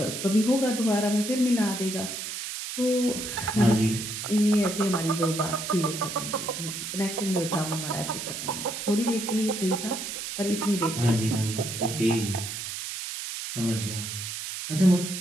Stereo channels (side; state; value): right; noise; hiss, 6 dB below the sound